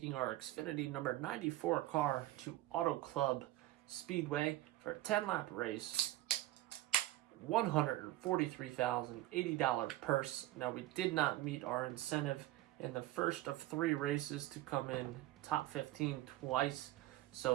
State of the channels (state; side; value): quieter; left; 16.2 dB